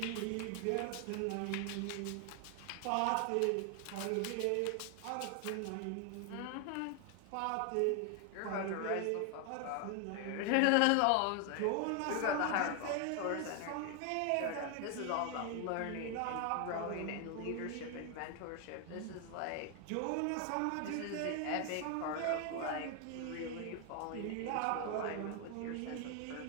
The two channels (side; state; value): both; different; correlation 0.00